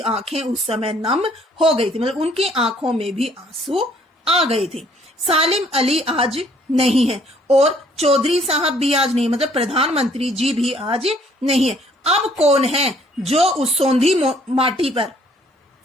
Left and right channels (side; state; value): both; normal; correlation 0.62